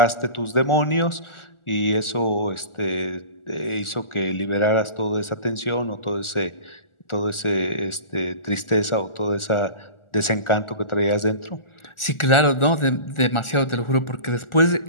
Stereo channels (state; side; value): late; right; 1.4 ms